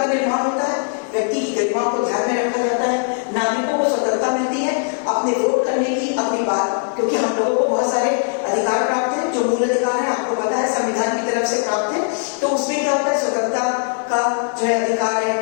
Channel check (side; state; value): right; silent; 66 dB below the other